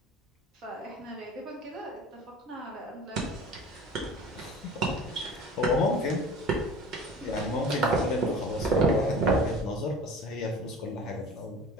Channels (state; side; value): normal; both; correlation 0.41